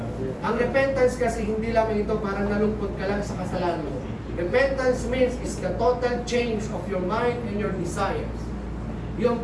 Ang repentance kasi hindi lamang ito parang nalungkot ka lang sa kasalanan mo. Repentance means is the total change of your mind and your desires. Yun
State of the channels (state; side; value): identical; both; correlation 1.00